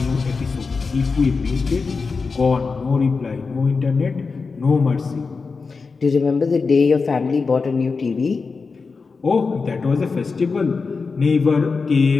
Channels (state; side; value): quieter; right; 4.6 dB